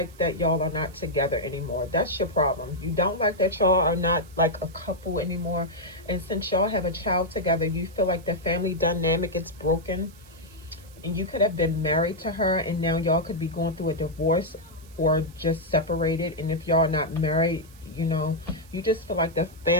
that y'all are not together anymore. That's your problem. You don't like that y'all are not like a couple anymore. And since y'all have a child together, you feel like the family dynamic is broken. And you could have been married to her, and now y'all could be going through a divorce or just separated. And if y'all are not married, you know, you just feel like the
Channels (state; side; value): noise; right; hiss, 25 dB below the sound